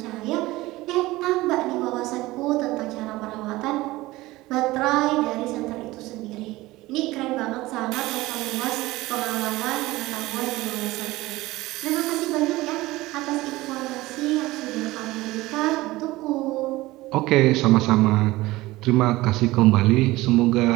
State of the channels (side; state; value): left; quieter; 19.0 dB